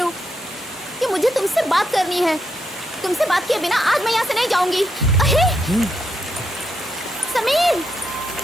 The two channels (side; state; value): both; normal; correlation 0.80